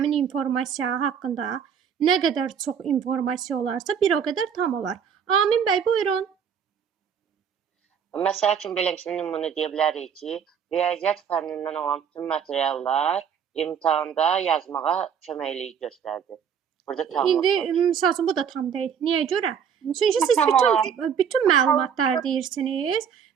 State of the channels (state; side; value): quieter; left; 7.6 dB